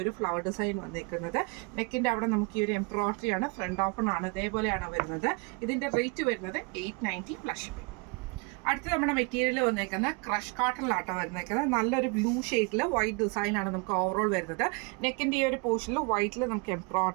ഒരു ഫ്ലവർ ഡിസൈൻ വന്നേക്കുന്നത്. നെക്കിന്റെ അവിടെ നമുക്ക് ഈ ഒരു എംബ്രോയിഡറി ആണ്. ഫ്രണ്ട് ഓപ്പൺ ആണ്. ഇതേപോലെയാണ് വരുന്നത്. ഇതിന്റെ റേറ്റ് വരുന്നത് 890 പ്ലസ്. അടുത്ത് നമ്മുടെ മെറ്റീരിയൽ വന്നേക്കുന്ന ക്രഷ് കോട്ടണിലാട്ടോ വന്നേക്കുന്നത്. നല്ലൊരു ബ്ലൂ ഷെയ്ഡിൽ വൈറ്റ് ഡിസൈൻ ആണ് നമുക്ക് ഓവറോൾ വരുന്നത്. നെക്കിന്റെ ഈ ഒരു പോർഷനിൽ വൈറ്റിൽ നമുക്ക്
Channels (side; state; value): left; quieter; 31.1 dB